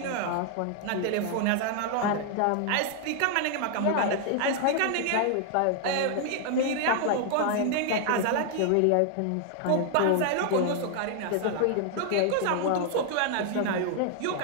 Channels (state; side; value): different; both; correlation 0.00